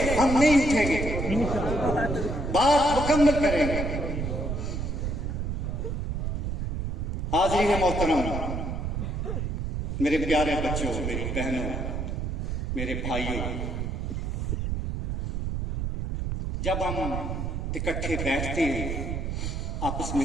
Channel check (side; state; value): right; noise; rumble, 2 dB below the sound